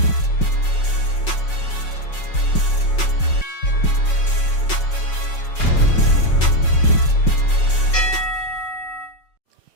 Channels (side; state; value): right; late; 5.4 ms